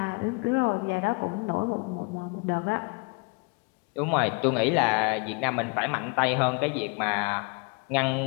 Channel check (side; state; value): right; quieter; 31.7 dB